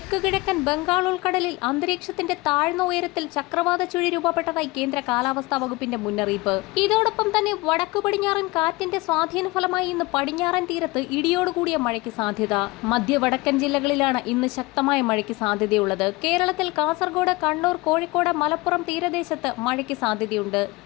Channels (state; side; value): quieter; right; 22.5 dB